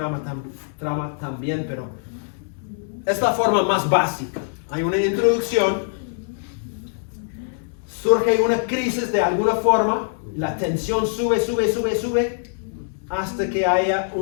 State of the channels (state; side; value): silent; right; 60 dB below the other